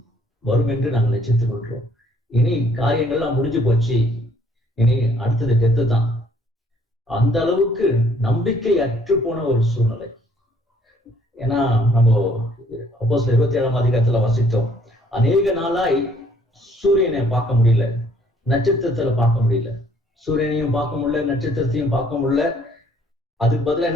வரும் என்று நாங்கள் நிச்சயித்துக் கொள்கிறோம். இனி காரியங்கள்லாம் முடிஞ்சு போச்சு, இனி அடுத்தது டெத்து தான். அந்த அளவுக்கு நம்பிக்கை அற்று போன ஒரு சூழ்நிலை. ஏன்னா நம்ம அப்போஸ்தலர் 27ஆம் அதிகாரத்துல வாசித்தோம், அநேக நாளாய் சூரியனை பார்க்க முடியல, நட்சத்திரத்துல பார்க்க முடியல, சூரியனையும் பார்க்க முடியல, நட்சத்திரத்தையும் பார்க்க முடியல. அதுக்கு பதிலா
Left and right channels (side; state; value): both; normal; correlation 0.62